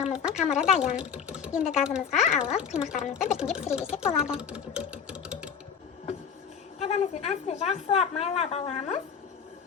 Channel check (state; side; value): quieter; right; 7.0 dB